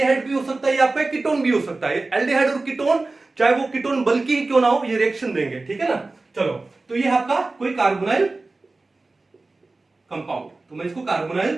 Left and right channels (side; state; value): left; quieter; 3.4 dB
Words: भी हो सकता है, ये आपका कीटोन भी हो सकता है। एल्डिहाइड और कीटोन, चाहे वो कीटोन बल्कि ही क्यों ना हो, ये रिएक्शन देंगे। ठीक है ना, चलो, तो ये आपका कोई कार्बोनाइल कंपाउंड, तो मैं इसको कार्बोनाइल